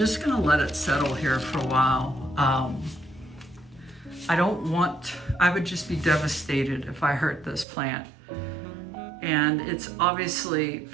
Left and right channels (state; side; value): drops out; left; at 7.7 s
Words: gonna let it settle here for a while. I would just be devastated if I hurt this plant. And it's obviously